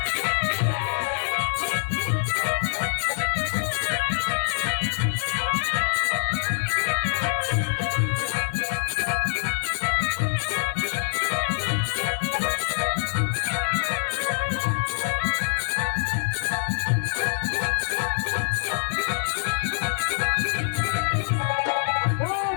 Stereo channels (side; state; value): right; silent; digital silence